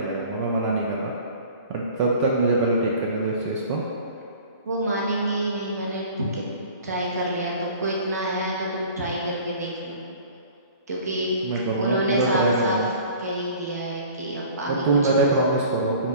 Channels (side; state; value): both; inverted; correlation -0.46